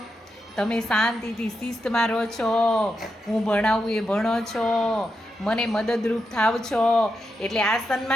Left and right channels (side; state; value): both; normal; correlation 0.86